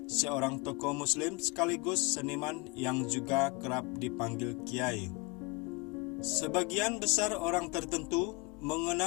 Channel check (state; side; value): quieter; right; 27.4 dB